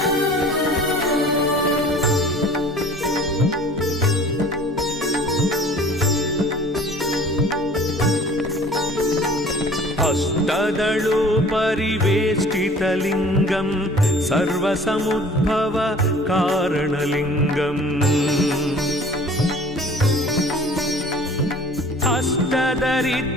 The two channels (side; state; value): both; normal; correlation 0.48